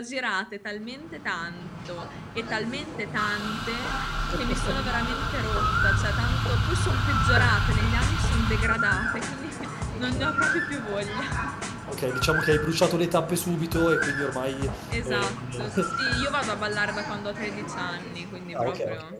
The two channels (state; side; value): identical; both; correlation 1.00